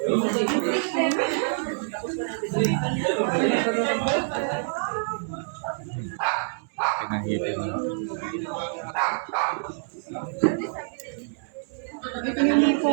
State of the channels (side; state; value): left; silent; digital silence